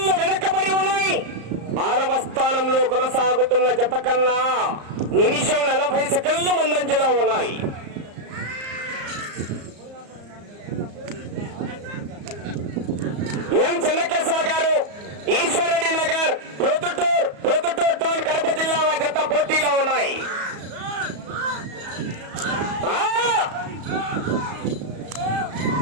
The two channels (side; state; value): left; late; 34 ms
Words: వెనకబడి ఉన్నాయి. 6వ స్థానంలో కొనసాగుతున్న జత కన్నా నిమిషం 40 సెకండ్లు ముందంజలో ఉన్నాయి. ఎం చెన్నకేశవ గారు ఈశ్వరెడ్డి నగర్ ప్రొద్దుటూరు టౌన్ కడప జిల్లా జత పోటీలో ఉన్నాయి.